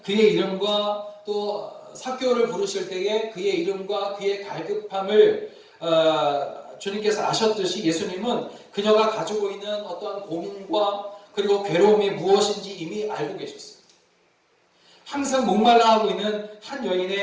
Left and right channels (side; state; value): both; identical; correlation 1.00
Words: 그의 이름과 또 삭개오를 부르실 때에 그의 이름과 그의 갈급함을 주님께서 아셨듯이 예수님은 그녀가 가지고 있는 어떠한 고민과 그리고 괴로움이 무엇인지 이미 알고 계셨어요. 항상 목말라 하고 있는 한